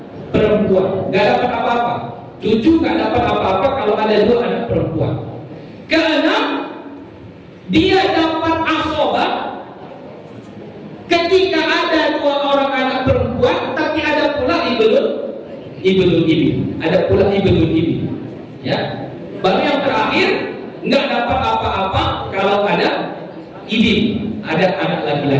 perempuan, nggak dapat apa-apa. Cucu nggak dapat apa-apa kalau ada 2 anak perempuan. Keenam, dia dapat asobah ketika ada 2 orang anak perempuan, tapi ada pula ibnul ibn, ada pula ibnul ibn. Ya, baru yang terakhir nggak dapat apa-apa kalau ada ibin, ada anak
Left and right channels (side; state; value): both; identical; correlation 1.00